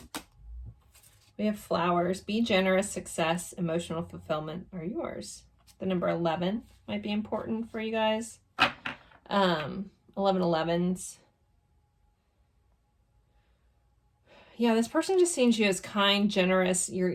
We have flowers. Be generous, success, emotional fulfillment are yours. The number 11 might be important for you guys. 1111s. Yeah, this person just sees you as kind, generous.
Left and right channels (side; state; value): both; identical; correlation 1.00